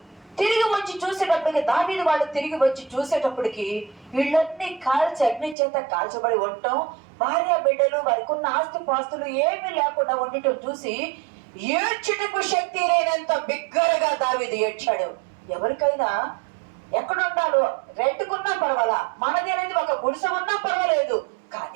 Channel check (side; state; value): left; drops out; at 5.6 s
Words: తిరిగి వచ్చి చూసేటప్పటికి, దావీదు వాళ్ళు తిరిగి వచ్చి చూసేటప్పటికి వీళ్ళన్నీ కాల్చి అగ్ని చేత కాల్చబడి ఉండటం, భార్య బిడ్డలు, వారికి ఉన్న ఆస్తి పాస్తులు ఏమీ లేకుండా ఉండటం చూసి ఏడ్చుటకు శక్తి లేనంత బిగ్గరగా దావీదు ఏడ్చాడు. ఎవరికైనా ఎక్కడుండాలో రెంట్కున్నా పర్వాలా, మనది అనేది ఒక గుడిసె ఉన్నా పర్వాలేదు,